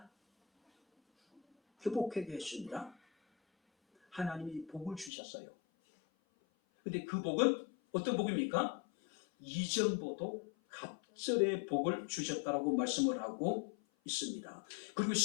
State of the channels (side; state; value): right; drops out; at 5.1 s